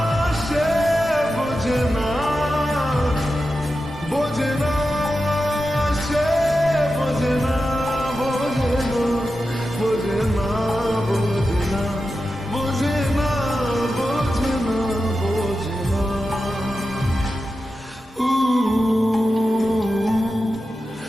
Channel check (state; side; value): normal; both; correlation 0.91